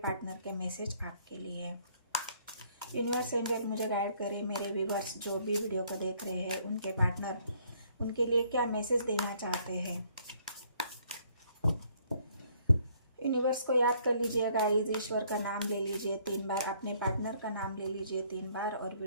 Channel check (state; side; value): inverted; both; correlation -0.64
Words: के मैसेज आपके लिए। यूनिवर्स एंजल मुझे गाइड करे, मेरे व्यूअर्स जो भी वीडियो को देख रहे हैं उनके पार्टनर उनके लिए क्या मैसेज देना चाहते हैं। यूनिवर्स को याद कर लीजिए गाइस, ईश्वर का नाम ले लीजिए 3 बार, अपने पार्टनर का नाम ले लीजिए 3 बार और